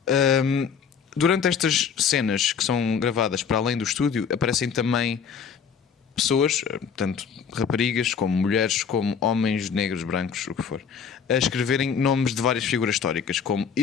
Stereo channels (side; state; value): right; quieter; 6.8 dB